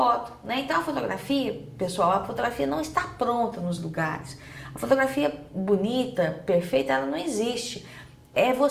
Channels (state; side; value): identical; both; correlation 1.00